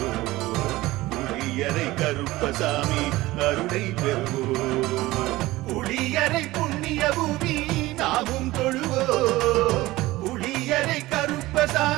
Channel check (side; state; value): left; quieter; 18.4 dB